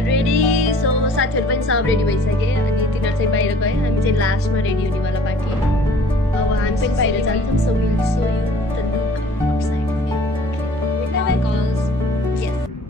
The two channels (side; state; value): both; normal; correlation 0.52